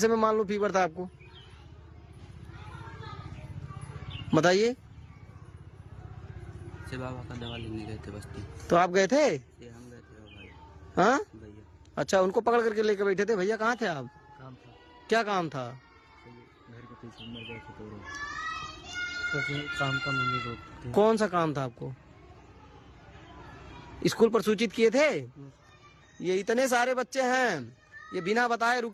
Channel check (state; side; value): identical; both; correlation 1.00